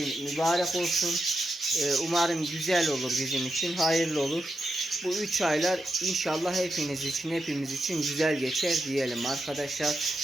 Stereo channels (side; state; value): both; normal; correlation 0.87